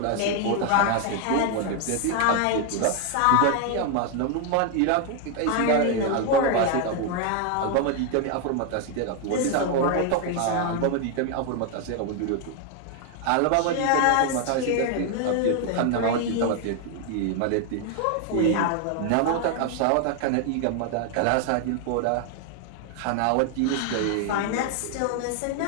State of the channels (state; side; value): different; both; correlation 0.01